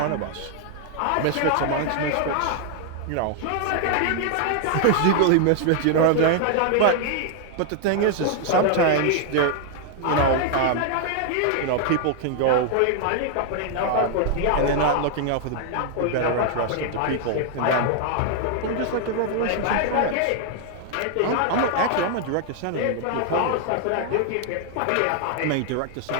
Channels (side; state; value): both; different; correlation 0.00